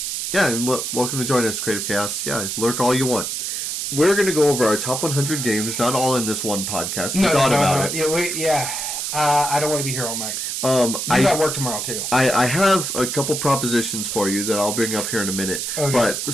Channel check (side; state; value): right; noise; hiss, 3 dB below the sound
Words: welcome to join us, Creative Chaos. Yeah, lurk all you want. We're going to go over our top 100 games, not all in this one podcast. We thought about it. I don't want to be here all night. I got work tomorrow, too. I have a couple propositions for you that I'll bring up here in a minute. Okay. But